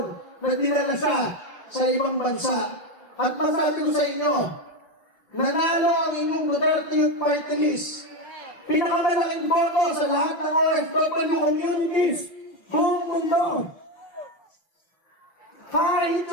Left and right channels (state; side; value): late; right; 5.5 ms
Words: na dinala siya sa ibang bansa. At masabi ko sa inyo, nanalo ang inyong Duterte Youth Party List. Pinakamalaking boto sa lahat ng OFW communities buong mundo. Kahit